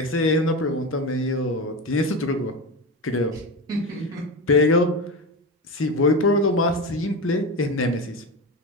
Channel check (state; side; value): normal; both; correlation 0.21